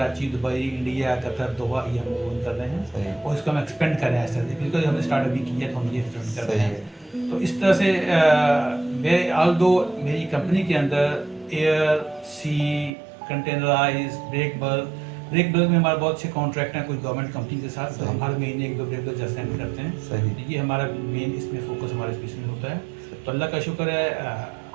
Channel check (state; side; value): drops out; left; at 12.9 s